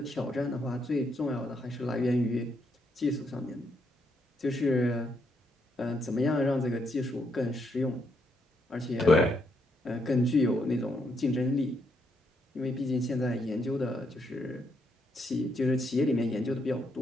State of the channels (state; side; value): normal; both; correlation 0.76